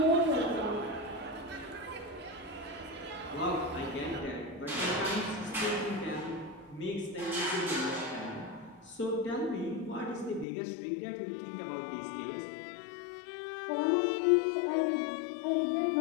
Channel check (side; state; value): right; drops out; at 10.5 s